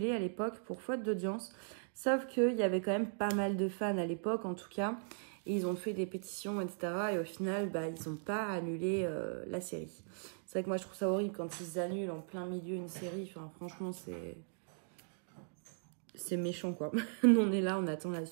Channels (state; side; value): silent; left; digital silence